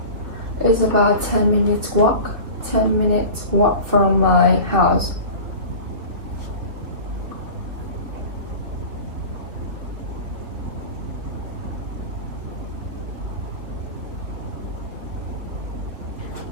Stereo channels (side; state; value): left; late; 3.2 ms